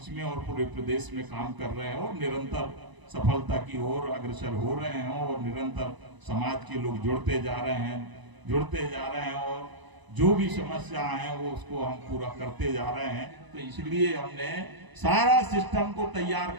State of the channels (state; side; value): late; left; 1.0 ms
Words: में और पूरे प्रदेश में काम कर रहे हैं, और निरंतर सफलता की ओर अग्रसर हो रहे हैं। और निरंतर समाज के लोग जुड़ते जा रहे हैं, और जो भी समस्या है वो उसको हम पूरा करते जा रहे हैं। तो इसलिए हमने सारा सिस्टम को तैयार